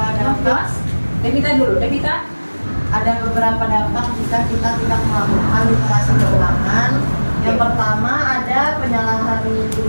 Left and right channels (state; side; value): inverted; both; correlation -1.00